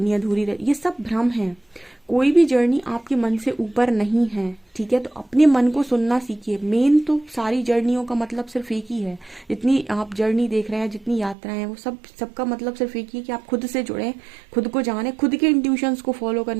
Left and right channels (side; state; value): left; drops out; at 11.4 s